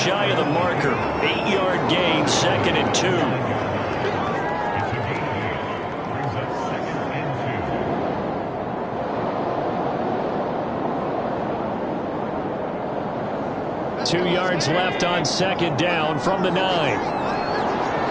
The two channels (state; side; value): identical; both; correlation 1.00